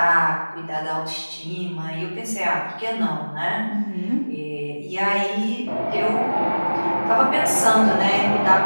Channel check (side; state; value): both; inverted; correlation -1.00